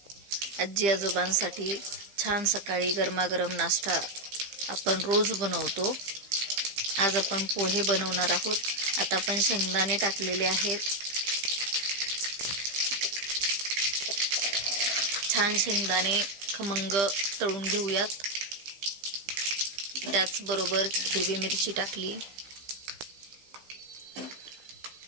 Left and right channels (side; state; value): left; late; 15 ms